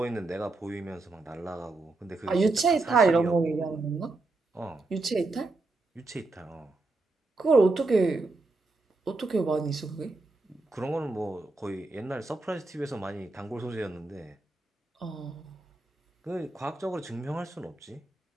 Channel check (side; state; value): left; quieter; 3.2 dB